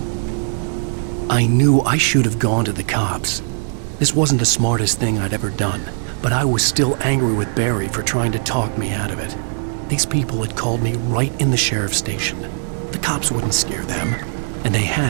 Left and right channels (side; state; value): left; silent; 63 dB below the other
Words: I knew I should have gone to the cops. This wasn't the smartest thing I'd ever done, but I was still angry with Barry for trying to talk me out of it. These people had called me right in the sheriff's station. The cops wouldn't scare them, and they